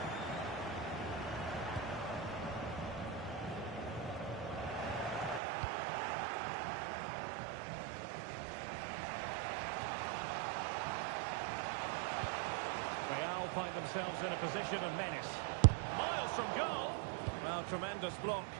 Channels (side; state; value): left; drops out; at 5.4 s